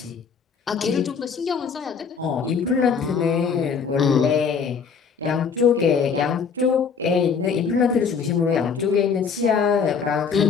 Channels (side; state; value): right; quieter; 6.0 dB